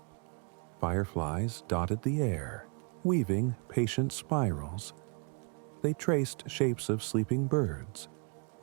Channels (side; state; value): left; quieter; 37.5 dB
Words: Fireflies dotted the air, weaving patient spirals. They traced shapes of sleeping birds,